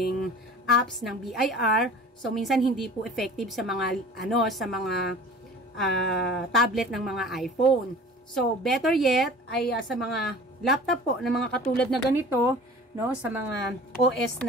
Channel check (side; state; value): both; normal; correlation 0.42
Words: apps ng BIR. So minsan hindi po effective sa mga tablet ng mga iPhone. So better yet ay sa mga laptop po na mga katulad na ganito, no, sa mga OS